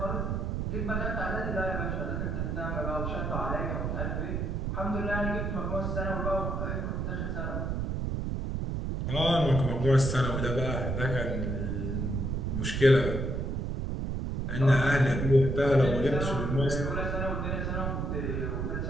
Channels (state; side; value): noise; right; rumble, 1 dB below the sound